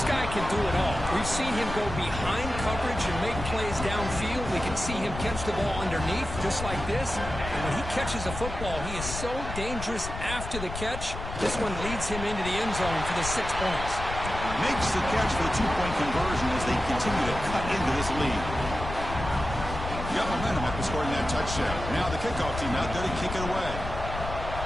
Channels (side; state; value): left; noise; rumble, 7 dB below the sound